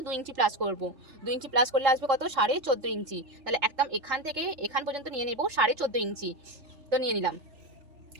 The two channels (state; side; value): late; left; 3.3 ms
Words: 2 ইঞ্চি প্লাস করবো। 2 ইঞ্চি প্লাস করলে আসবে কত, 14.5 ইঞ্চি। তাহলে একদম এখান থেকে এখান পর্যন্ত নিয়ে নেবো 14.5 ইঞ্চি। তো নিয়ে নিলাম।